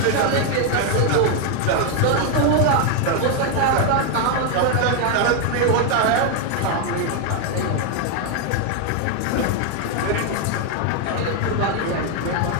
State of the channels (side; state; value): both; different; correlation 0.01